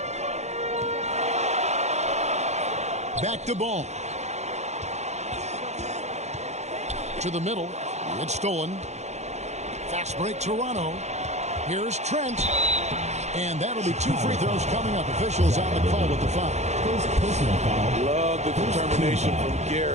Back to Ball. To the middle. It's stolen. Fast break Toronto. Here's Trent. And that'll be two free throws coming up. Officials on the call with the foul. Love the determination from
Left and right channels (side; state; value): left; late; 0.33 ms